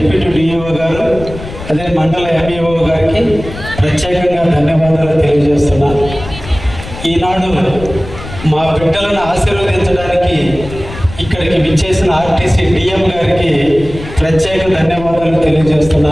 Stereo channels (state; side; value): noise; left; rumble, 12 dB below the sound